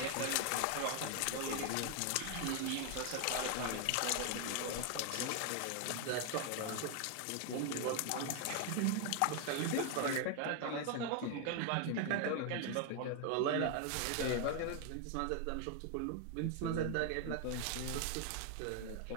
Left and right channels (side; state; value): both; different; correlation 0.00